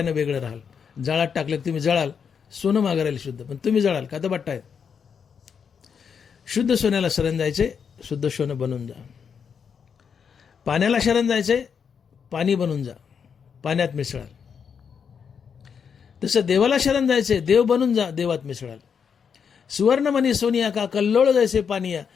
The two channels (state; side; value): quieter; right; 6.8 dB